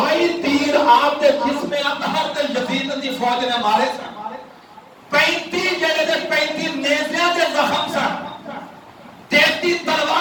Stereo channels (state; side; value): identical; both; correlation 1.00